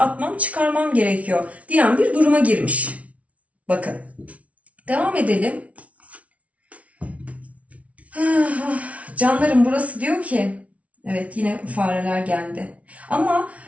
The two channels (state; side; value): late; left; 0.066 ms